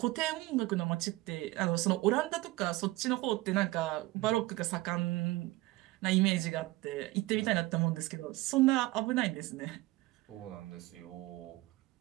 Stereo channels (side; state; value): left; quieter; 19.7 dB